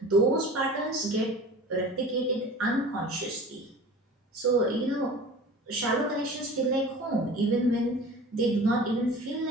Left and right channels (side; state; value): both; normal; correlation 0.39